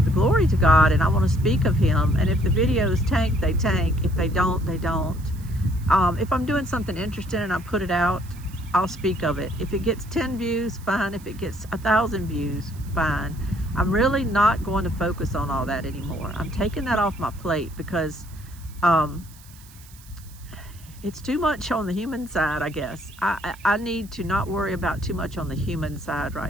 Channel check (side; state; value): right; noise; hiss, 23 dB below the sound